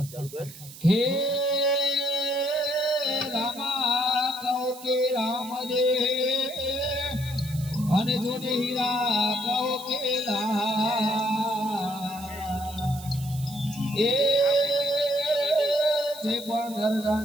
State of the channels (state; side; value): noise; right; hiss, 16 dB below the sound